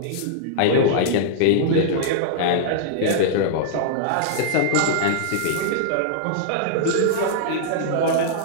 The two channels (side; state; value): both; different; correlation -0.01